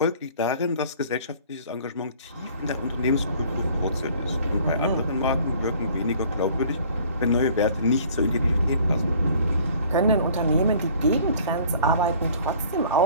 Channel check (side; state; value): both; inverted; correlation -0.53